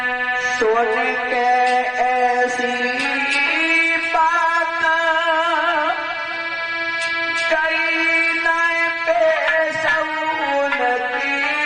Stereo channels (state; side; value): identical; both; correlation 1.00